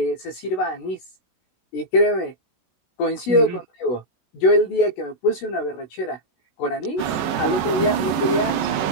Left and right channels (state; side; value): late; right; 16 ms